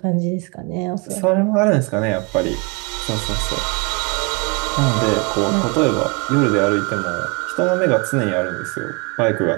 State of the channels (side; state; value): left; quieter; 30.8 dB